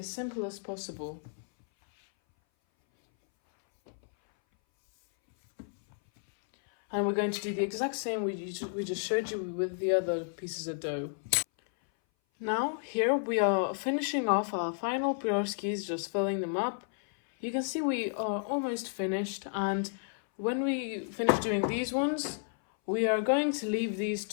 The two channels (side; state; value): right; silent; 57 dB below the other